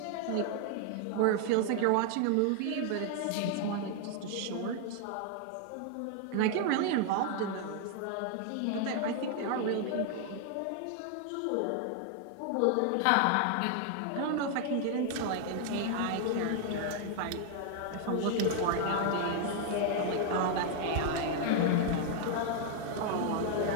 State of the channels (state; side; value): different; both; correlation 0.00